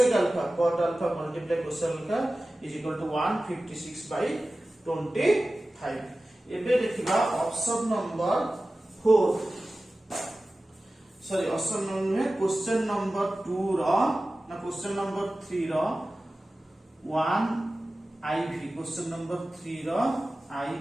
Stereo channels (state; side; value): normal; both; correlation 0.96